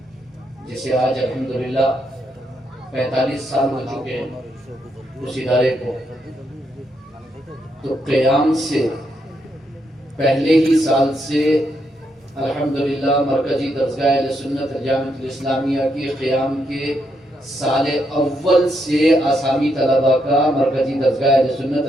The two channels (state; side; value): normal; both; correlation 0.78